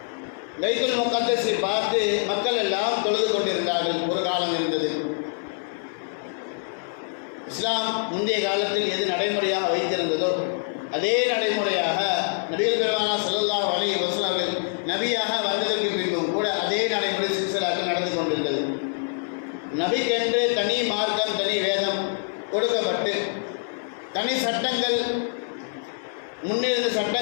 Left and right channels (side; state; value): right; silent; 60 dB below the other